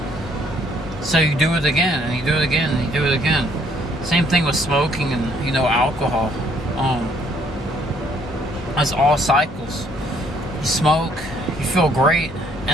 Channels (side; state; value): both; normal; correlation 0.65